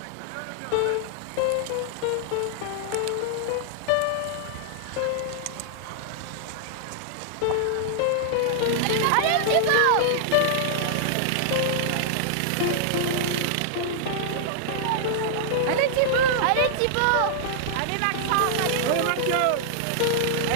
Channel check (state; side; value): different; both; correlation -0.01